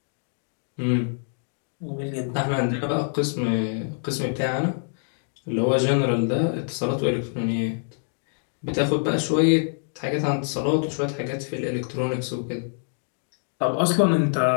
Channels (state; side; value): silent; right; digital silence